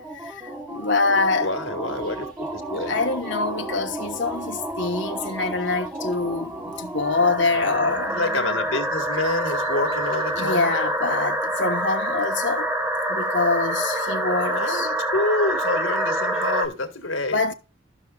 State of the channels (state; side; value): normal; both; correlation -0.08